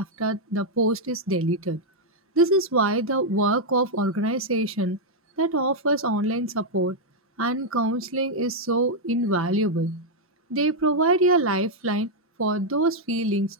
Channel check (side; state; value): both; normal; correlation -0.02